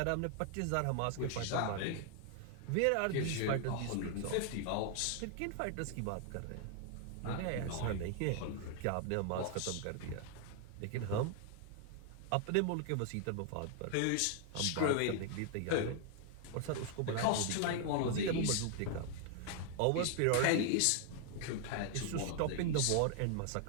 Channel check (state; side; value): different; both; correlation 0.00